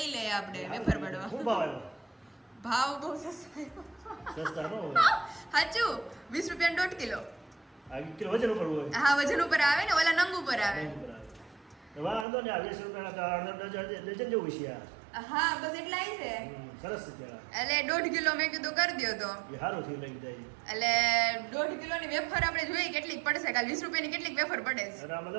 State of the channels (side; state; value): left; drops out; at 12.2 s